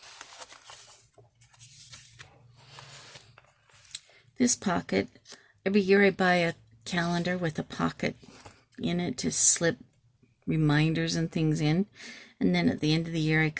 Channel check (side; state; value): both; identical; correlation 1.00